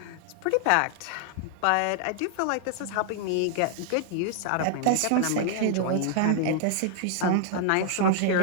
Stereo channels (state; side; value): different; both; correlation -0.01